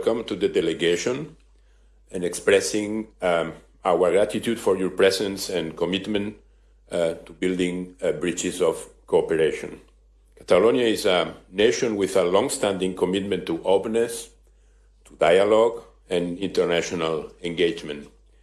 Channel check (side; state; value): both; identical; correlation 1.00